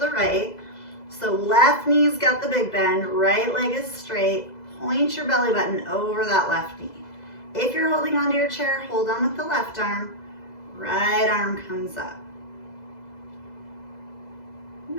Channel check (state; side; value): late; right; 2.0 ms